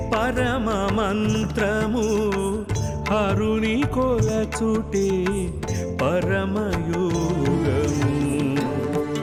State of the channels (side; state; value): both; identical; correlation 1.00